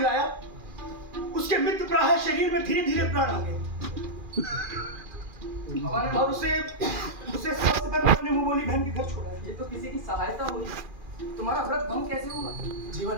उसके मित्र प्राह शरीर में धीरे धीरे प्राण आ गए और उसे स्वस्थ कर अपने मुंह बोली बहन के घर छोड़ा। ये तो किसी की सहायता हुई। तुम्हारा व्रत भंग कैसे हुआ?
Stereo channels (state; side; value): late; left; 2.4 ms